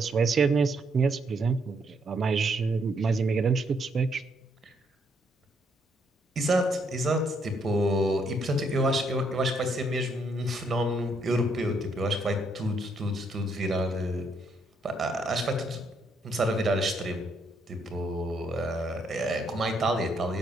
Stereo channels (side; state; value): both; normal; correlation 0.73